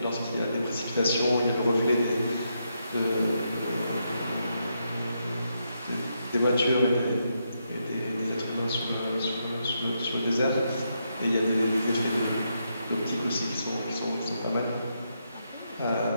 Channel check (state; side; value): inverted; both; correlation -0.81